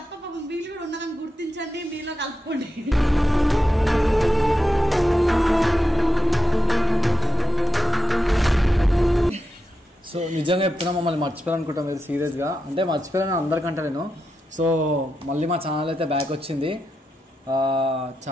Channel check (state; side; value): normal; both; correlation 0.88